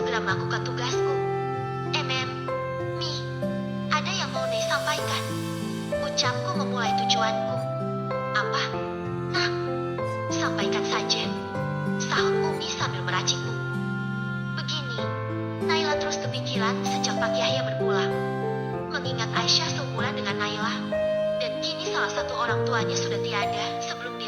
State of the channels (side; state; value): both; identical; correlation 1.00